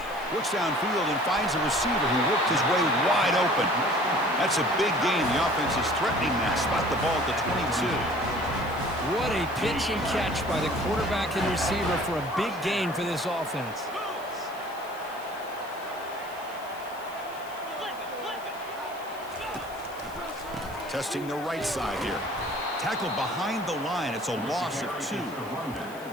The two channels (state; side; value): noise; left; hiss, 21 dB below the sound